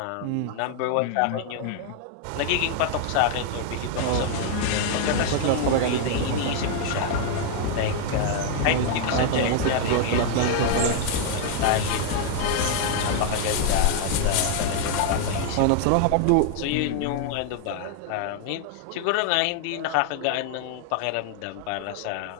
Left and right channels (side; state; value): both; different; correlation 0.00